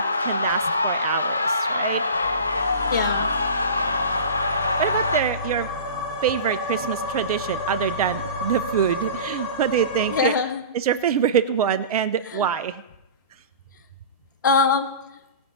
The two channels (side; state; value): both; inverted; correlation -0.34